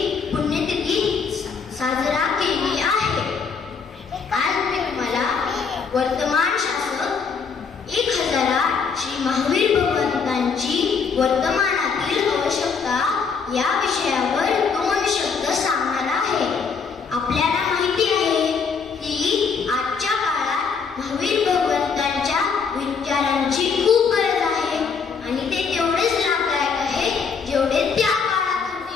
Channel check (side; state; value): right; quieter; 5.7 dB